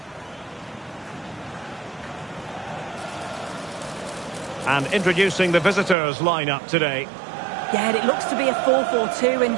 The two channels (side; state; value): left; drops out; at 6.0 s